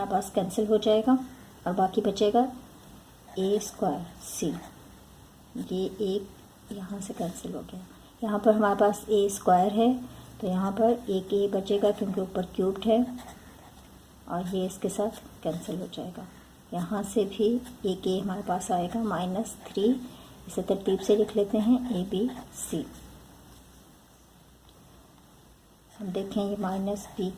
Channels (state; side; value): identical; both; correlation 1.00